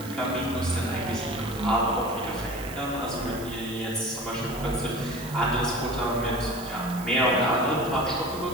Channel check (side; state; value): right; noise; hiss, 15 dB below the sound